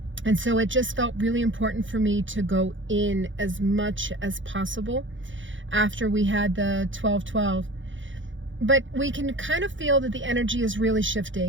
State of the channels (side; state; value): left; late; 0.56 ms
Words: And so it just felt really important for me to go in as much as possible after we had the 12/12. But we can kind of feel that the energy is really